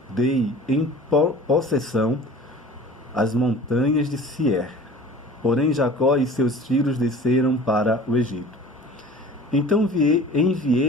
dei em possessão as montanhas de Sier. Porém Jacó e seus filhos desceram para o Egito. Então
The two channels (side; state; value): both; normal; correlation 0.43